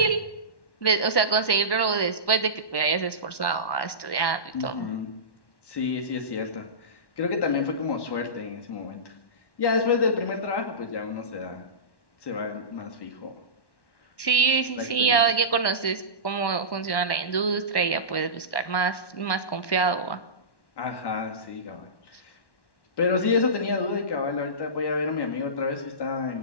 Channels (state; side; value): late; right; 1.1 ms